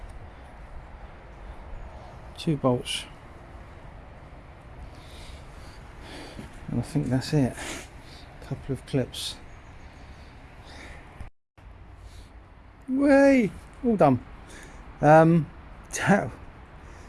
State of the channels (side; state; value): both; identical; correlation 1.00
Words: 2 bolts. And I think that's it. A couple of clips. Way! All done. That